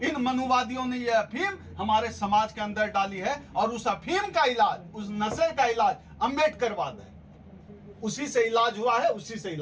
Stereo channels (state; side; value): identical; both; correlation 1.00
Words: इन मनुवादियों ने ये अफीम हमारे समाज के अंदर डाली है, और उस अफीम का इलाज, उस नशे का इलाज अम्बेडकरवाद है। उसी से इलाज हुआ है, उसी से